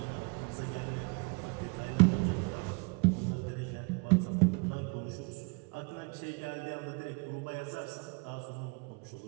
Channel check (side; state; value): left; quieter; 31.7 dB